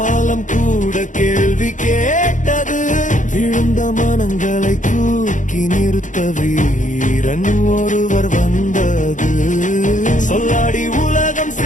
கூட கேள்வி கேட்டது. விழுந்த மனங்களை தூக்கி நிறுத்த வீரன் ஒருவர் வந்தது. சொல்லாடி உலகம்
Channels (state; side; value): late; right; 0.37 ms